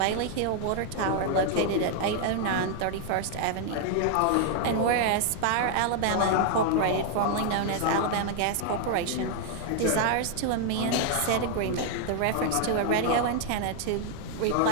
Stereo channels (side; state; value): both; different; correlation 0.00